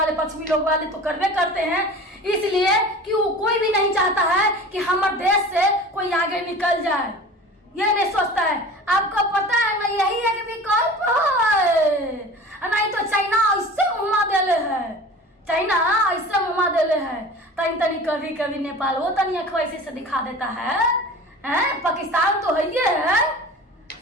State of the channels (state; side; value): normal; both; correlation 0.39